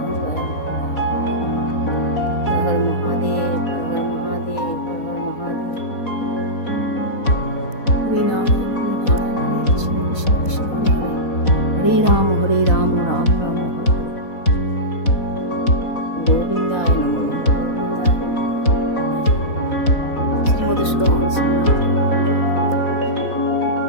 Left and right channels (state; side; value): late; right; 4.1 ms